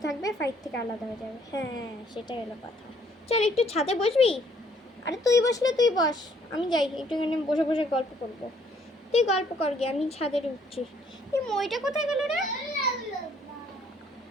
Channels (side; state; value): both; normal; correlation 0.64